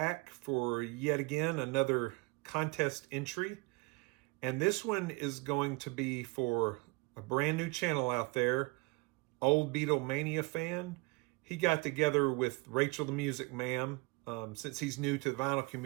for yet again another contest entry. And this one is going to be for a brand new channel out there, OldBeatleManiaFan. He got together with Rachel the Music Ma'am, since he's new to the vinyl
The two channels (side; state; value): left; quieter; 25.9 dB